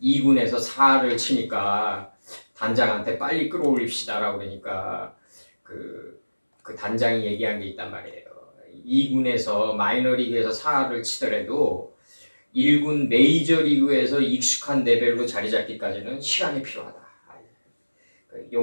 2군에서 4를 치니까 단장한테 빨리 끌어올립시다라고 그러니까 그 단장이 얘기한 게 있단 말이에요. 2군에서 마이너리그에서 4를 치더라도 1군 메이저리그에서 익숙한 레벨로 자리 잡기까지는 시간이 필요하다.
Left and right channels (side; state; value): both; inverted; correlation -1.00